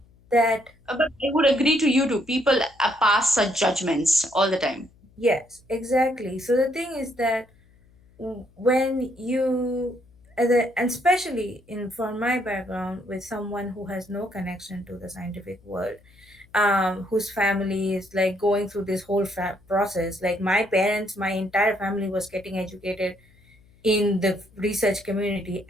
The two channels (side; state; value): left; noise; hum, 29 dB below the sound